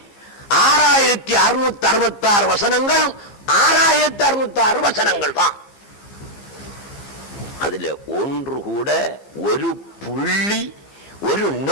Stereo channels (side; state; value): right; late; 15 ms